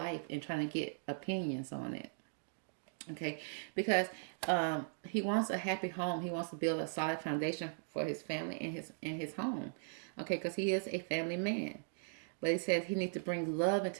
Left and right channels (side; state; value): left; silent; digital silence